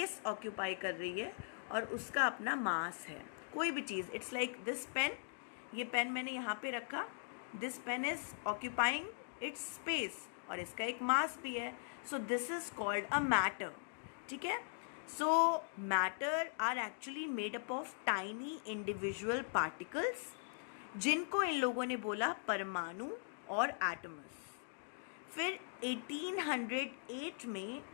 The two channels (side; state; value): right; silent; digital silence